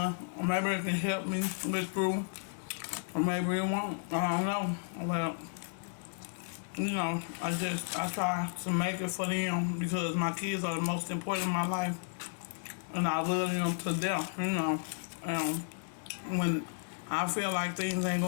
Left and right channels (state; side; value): silent; right; 56 dB below the other